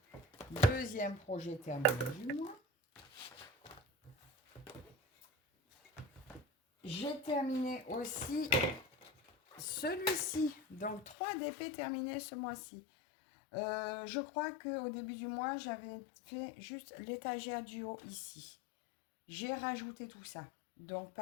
deuxième projet terminé du mois. J'ai terminé aussi celui-ci. Donc, 3 DP terminés ce mois-ci. Je crois qu'au début du mois, j'avais fait juste l'étagère du haut ici. J'ai rajouté tout ça. Donc,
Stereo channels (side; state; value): right; drops out; at 11.2 s